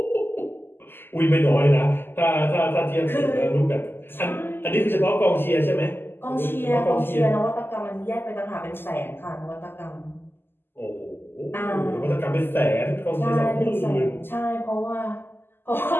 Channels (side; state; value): right; late; 0.10 ms